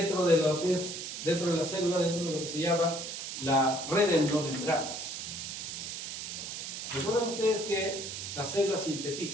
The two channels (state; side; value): noise; right; hiss, 6 dB below the sound